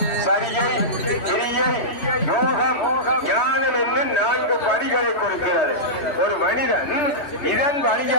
சரியை, கிரியை, யோகம், ஞானம் என்று 4 படிகளை கொடுக்கிறது. ஒரு மனிதன் இதன்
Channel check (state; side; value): late; right; 3.1 ms